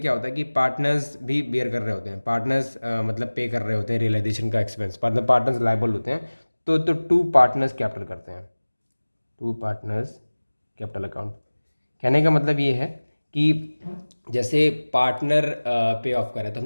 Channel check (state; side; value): inverted; both; correlation -1.00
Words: होता है कि पार्टनर्स भी बेयर कर रहे होते हैं, पार्टनर्स मतलब पे कर रहे होते हैं रियलाइजेशन का एक्सपेंस, मतलब पार्टनर्स लायबल होते हैं। तो टू पार्टनर्स कैपिटल करते हैं, टू पार्टनर्स कैपिटल अकाउंट। कहने का मतलब ये है कि जैसे पार्टनर पे ऑफ करे, तो